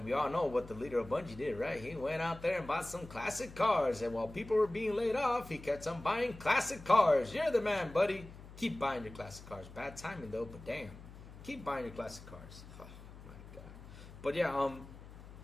we all know what the leader of Bungie did, right? He went out there and bought some classic cars. And while people were being laid off, he kept on buying classic cars. You're the man, buddy. Keep buying your classic cars. Bad timing, though, but damn. Keep buying your classic cars. Oh, my God. But, yeah,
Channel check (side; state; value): left; noise; hum, 16 dB below the sound